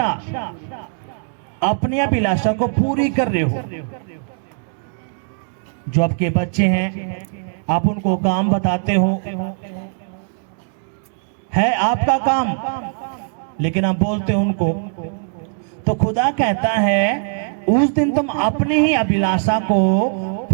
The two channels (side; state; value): left; silent; digital silence